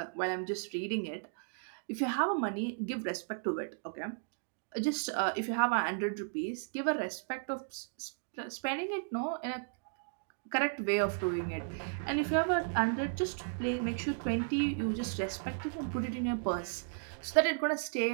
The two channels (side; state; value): left; silent; digital silence